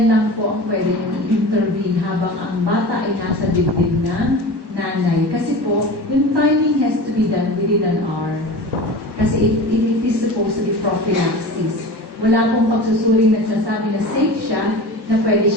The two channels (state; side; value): late; left; 1.2 ms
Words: lang po ang pwede yung intervene habang ang bata ay nasa dibdib ng nanay. Kasi po, yung timing has to be done within an hour. Kasi it is supposed to be prophylaxis. Wala pong pagsusuring nagsasabi na safe siya, na pwede